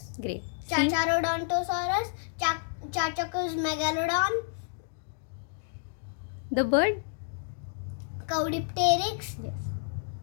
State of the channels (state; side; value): silent; right; digital silence